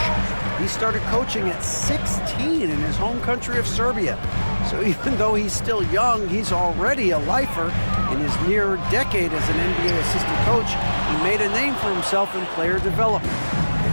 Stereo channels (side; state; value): both; inverted; correlation -1.00